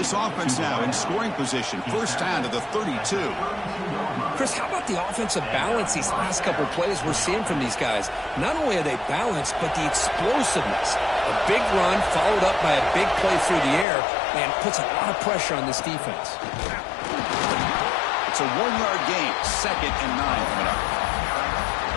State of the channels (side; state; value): right; drops out; at 13.9 s